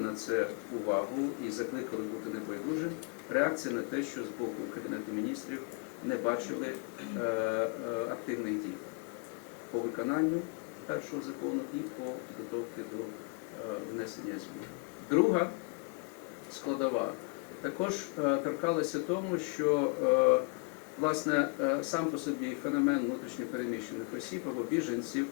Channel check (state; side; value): quieter; right; 33.7 dB